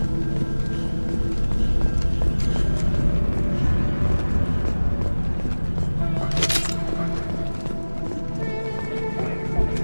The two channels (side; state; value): both; inverted; correlation -1.00